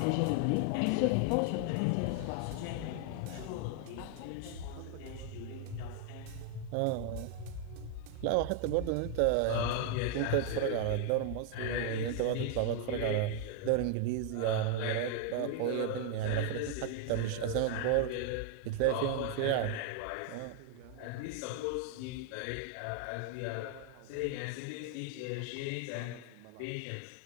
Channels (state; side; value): different; both; correlation 0.00